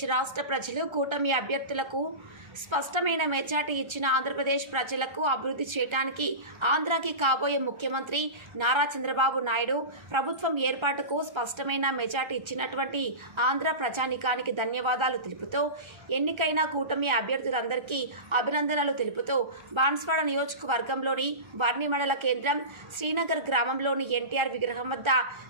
రాష్ట్ర ప్రజలు కూటమి అభ్యర్థులకు స్పష్టమైన మెజార్టీ ఇచ్చిన ఆంధ్రప్రదేశ్ ప్రజలకు అభివృద్ధి చేయడానికి ఆంధ్రాకి కాబోయే ముఖ్యమంత్రి నారా చంద్రబాబు నాయుడు ప్రభుత్వం ఏర్పాటుకు స్పష్టమైన మెజార్టీ ఇచ్చినటువంటి ఆంధ్ర ప్రజానికానికి ధన్యవాదాలు తెలుపుతూ ఎన్నికైన కూటమి అభ్యర్థులందరికీ అభినందనలు తెలుపుతూ బాన్స్వాడ నియోజకవర్గంలోని వర్ణి మండల కేంద్రం శ్రీనగర్ గ్రామంలోని ఎన్టీఆర్ విగ్రహం వద్ద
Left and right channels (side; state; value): left; late; 1.3 ms